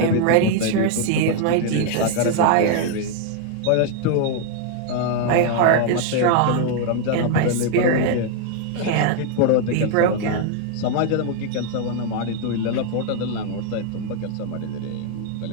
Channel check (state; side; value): different; both; correlation 0.00